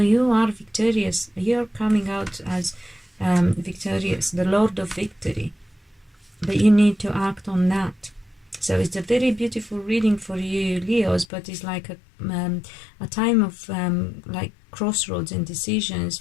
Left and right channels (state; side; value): drops out; right; at 11.2 s